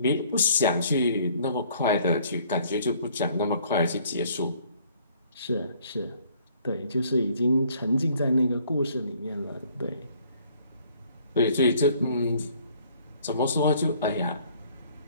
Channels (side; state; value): both; inverted; correlation -0.59